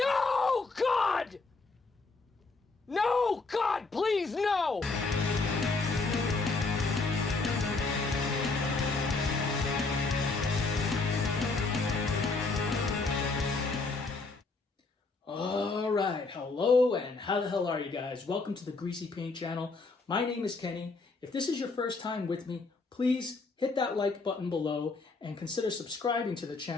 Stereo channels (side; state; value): right; quieter; 3.8 dB